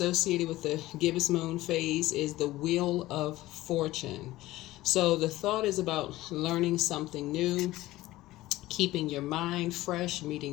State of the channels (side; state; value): right; quieter; 17.0 dB